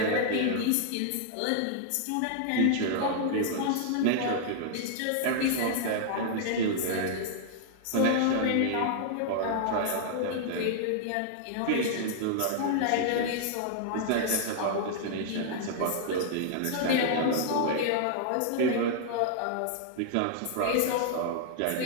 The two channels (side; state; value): both; different; correlation -0.01